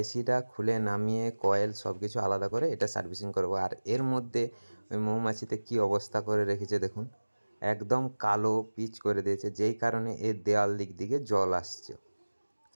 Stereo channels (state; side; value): inverted; both; correlation -1.00